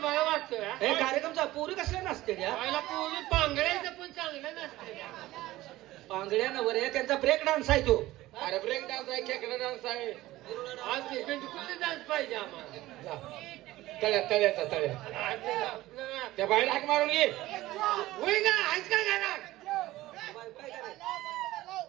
वाटतोय हे कार्यक्रमचा पुरी कसल्या नसते त्या पूर्वी पांगड्याचं पण चांगलं नसते. पांगड्या नवर आहे त्यांचा ब्रेक डान्स आहे तो. अरे ब्रेक डान्स आहे, खेकडा डान्स आहे. आज कुठले डान्स पाहिजे आम्हाला. तळ्याचा तळ्या त्या बाहेर हाक मारून घे. होय का आहेस का घरात.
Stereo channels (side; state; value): left; quieter; 16.9 dB